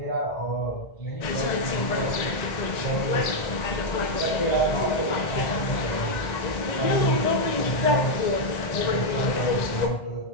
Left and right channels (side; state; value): right; late; 1.9 ms